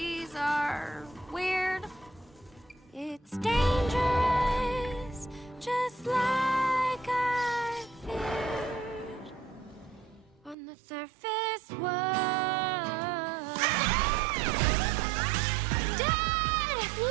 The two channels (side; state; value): left; drops out; at 10.6 s